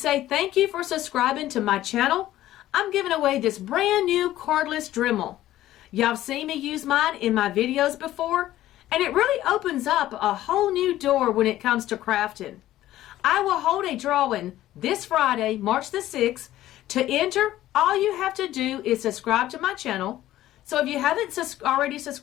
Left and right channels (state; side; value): quieter; right; 14.2 dB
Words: thank you for subscribing to my channel, I'm giving away this brand new cordless Dremel. Y'all seen me use mine in my videos before, and it really opens up a whole new door when it comes to crafting. I will hold a drawing this Friday, March the 6th. To enter, all you have to do is subscribe to my channel. So if you haven't already